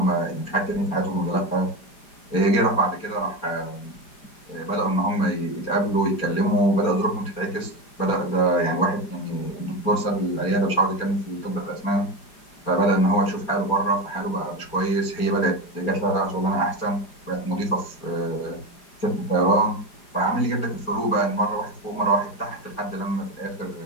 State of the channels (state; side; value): late; right; 4.9 ms